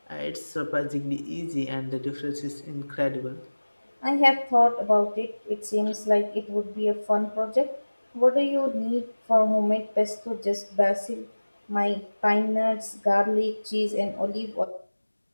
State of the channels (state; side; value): inverted; both; correlation -1.00